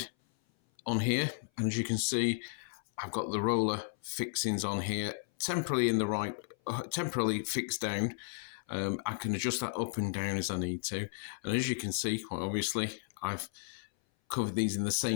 on here, and as you can see, I've got the roller fixings on here, temporarily fixed down. I can adjust that up and down as I need to, and as you can see, quite obviously, I've covered these in the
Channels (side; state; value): right; silent; 55 dB below the other